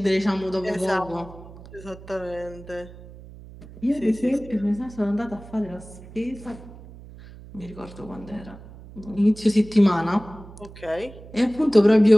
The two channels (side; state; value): right; noise; hum, 18 dB below the sound